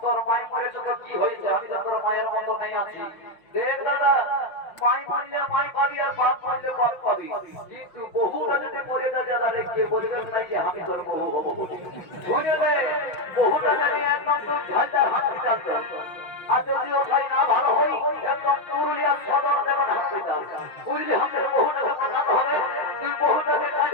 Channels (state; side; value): late; right; 5.7 ms